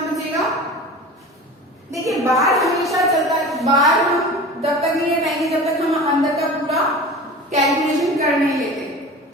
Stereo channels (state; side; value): normal; both; correlation 0.35